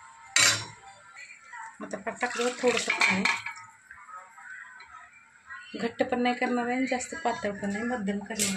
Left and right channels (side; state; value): both; identical; correlation 1.00